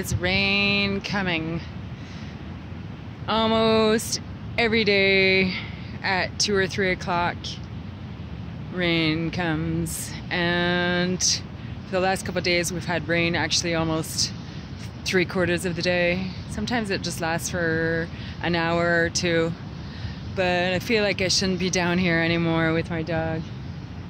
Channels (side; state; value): both; identical; correlation 1.00